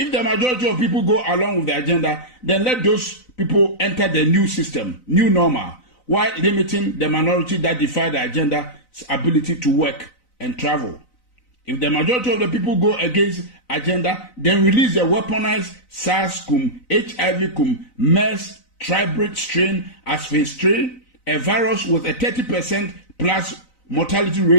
the majority of people go along with the agenda, then let those people enter the new system, new normal, while limiting the minority that defy the agenda's ability to work and travel. If the majority of the people go against agenda, then release the weaponized SARS-CoV, HIV-CoV, MERS, tribrid strain as phase 3, a virus with a 30% plus mortality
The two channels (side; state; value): right; late; 4.0 ms